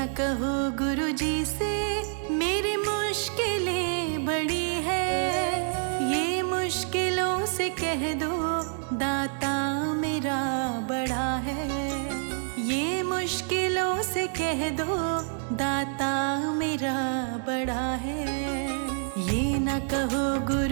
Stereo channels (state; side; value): silent; left; 60 dB below the other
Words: कहो गुरुजी से मेरी मुश्किलें बड़ी है। ये मुश्किलों से कह दो दाता मेरा बड़ा है। ये मुश्किलों से कह दो दाता मेरा बड़ा है। ये न कहो